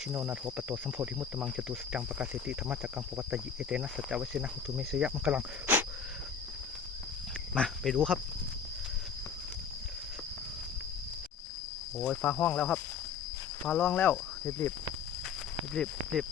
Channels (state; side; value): quieter; right; 6.5 dB